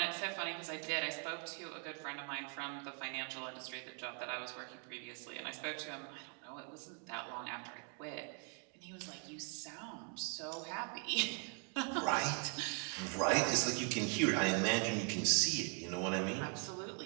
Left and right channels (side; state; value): left; quieter; 35.8 dB